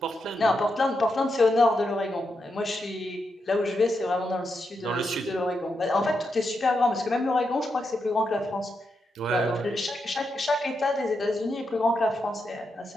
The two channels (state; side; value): normal; both; correlation 0.84